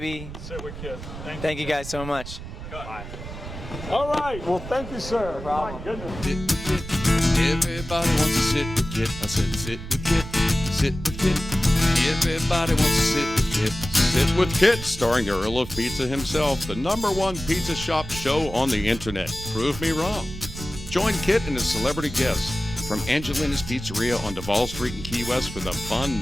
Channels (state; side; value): noise; right; rumble, 11 dB below the sound